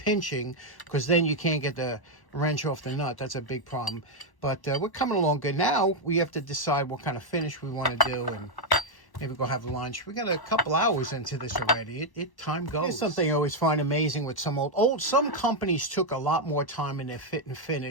because then you can't get the wrench off the nut. That's a big problem. But we're coming along good. Now we have to decide what kind of finish we want to do, and maybe go have lunch. We got a couple hours into this already. Time goes. Here's something I always find amazing with some companies took a lot more time in their fit and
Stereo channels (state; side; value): late; right; 1.1 ms